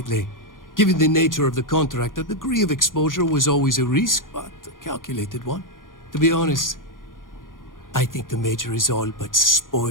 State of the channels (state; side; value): late; right; 0.90 ms